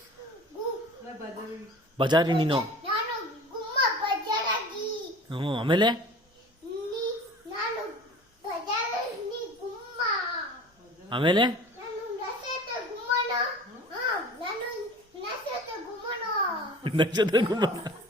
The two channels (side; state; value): both; normal; correlation 0.41